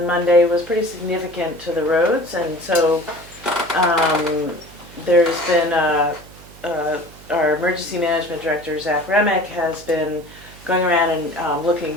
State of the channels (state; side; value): noise; right; hum, 21 dB below the sound